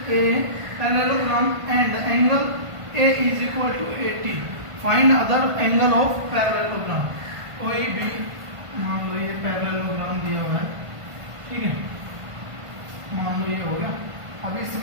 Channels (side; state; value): left; late; 1.5 ms